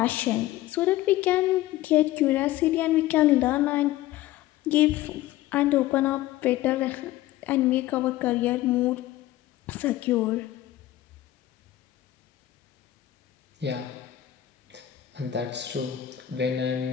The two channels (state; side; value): quieter; right; 14.4 dB